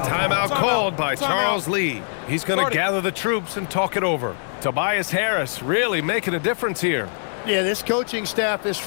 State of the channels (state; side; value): silent; right; digital silence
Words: called by Charles Lee. He's going to gather the troops and talk it over. Tobias Harris really making a difference here. Yeah, this coaching staff is